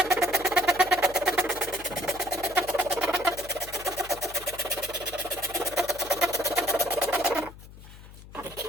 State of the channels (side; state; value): left; noise; hum, 17 dB below the sound